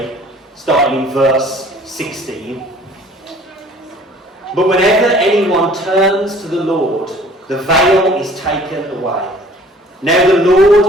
starting in verse 16. But whenever anyone turns to the Lord, the veil is taken away. Now the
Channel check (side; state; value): both; normal; correlation 0.52